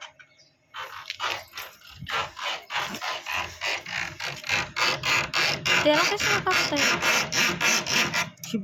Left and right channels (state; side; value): identical; both; correlation 1.00